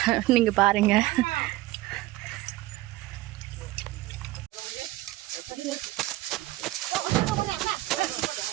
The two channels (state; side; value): quieter; left; 17.7 dB